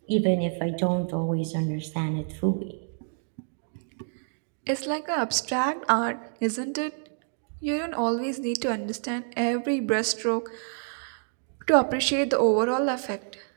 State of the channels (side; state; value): left; silent; digital silence